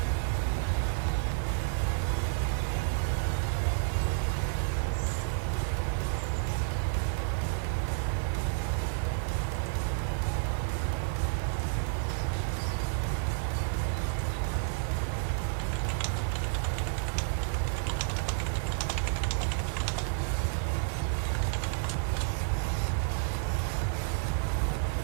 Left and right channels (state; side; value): silent; left; 57 dB below the other